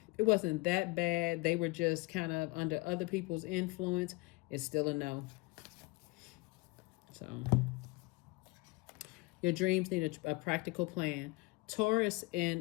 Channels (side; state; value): right; quieter; 25.2 dB